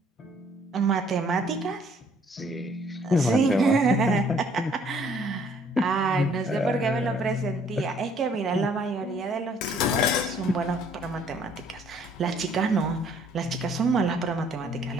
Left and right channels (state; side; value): normal; both; correlation 0.61